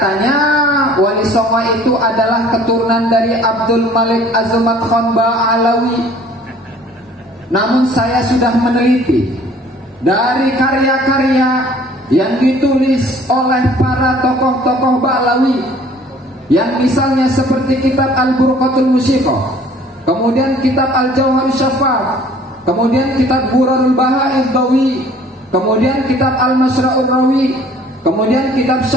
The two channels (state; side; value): normal; both; correlation 0.54